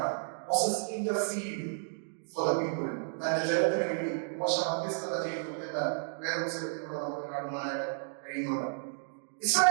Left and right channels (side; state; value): left; silent; digital silence